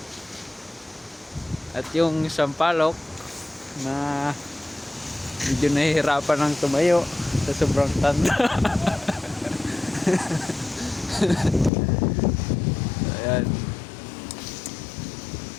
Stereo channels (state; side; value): drops out; right; at 11.7 s